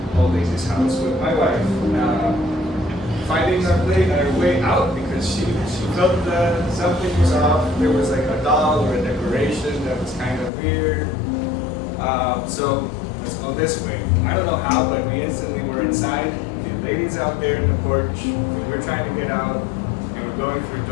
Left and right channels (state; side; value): drops out; right; at 10.5 s